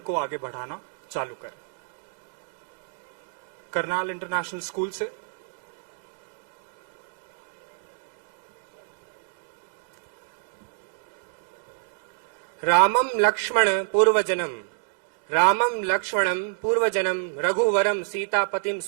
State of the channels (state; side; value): silent; left; digital silence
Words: को आगे बढ़ाना चालू करें। करनाल इंटरनेशनल स्कूल से रामं लक्ष्मण पूर्वजनम रामं लक्ष्मणं पूर्वजनम रघुवरम सीतापतिम